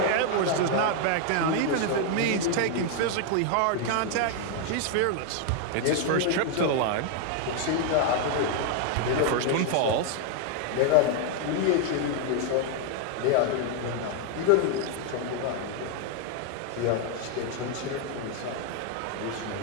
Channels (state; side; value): different; both; correlation 0.00